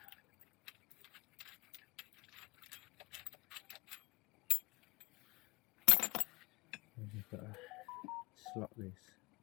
And you've got to slot this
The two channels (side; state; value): right; quieter; 24.2 dB